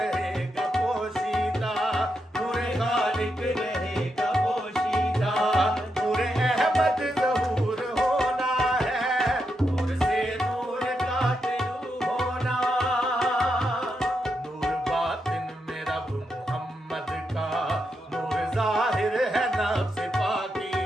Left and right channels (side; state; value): both; normal; correlation 0.84